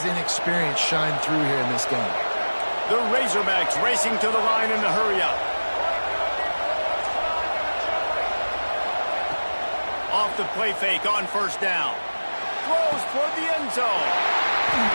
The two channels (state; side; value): inverted; both; correlation -1.00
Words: inexperience shine through here in this game. The Razorbacks racing to the line in the hurry-up. Off the play fake on first down. Throws toward the end zone.